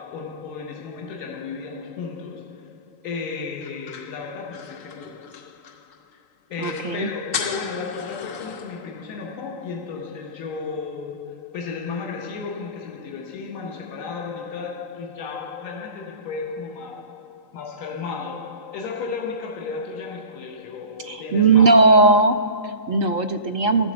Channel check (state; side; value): late; left; 3.8 ms